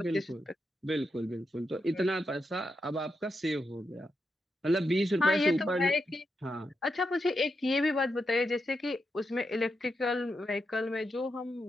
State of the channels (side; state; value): both; normal; correlation 0.85